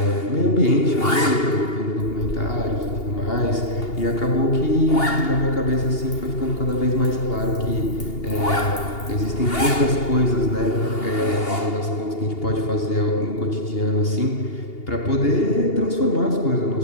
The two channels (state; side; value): late; right; 2.8 ms